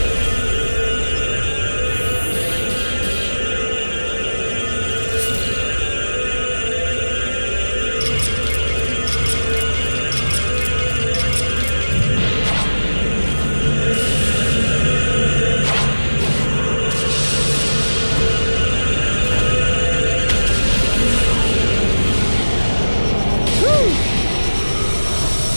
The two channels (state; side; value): inverted; both; correlation -1.00